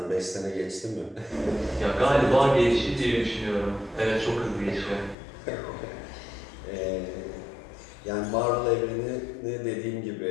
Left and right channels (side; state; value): right; drops out; at 5.2 s